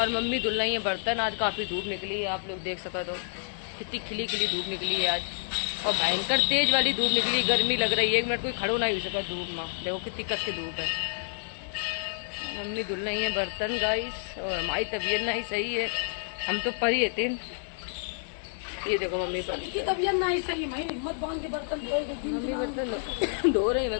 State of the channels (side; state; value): right; silent; digital silence